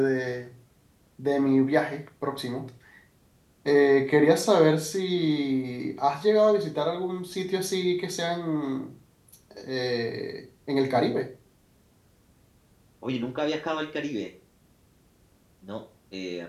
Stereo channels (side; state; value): both; identical; correlation 1.00